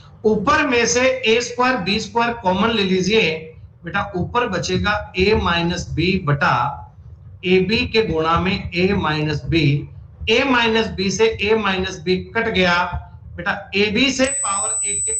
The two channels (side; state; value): both; identical; correlation 1.00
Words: ऊपर में से ए स्क्वायर बी स्क्वायर कॉमन ले लीजिए बेटा, ऊपर बचेगा a माइनस बी बटा ए बी के गुणा में a minus b. A minus b से a माइनस बी कट गया बेटा, ए बी से पावर 1 के